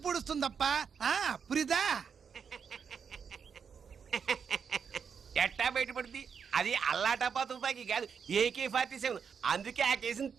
పూడుస్తుందప్ప. పురిదా ఎట్టా బయటపడుద్ది? అది అల్లాటపా తుపాకీ కాదు, AK-47. అందుకే ఆ కేసుని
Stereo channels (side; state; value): left; quieter; 6.6 dB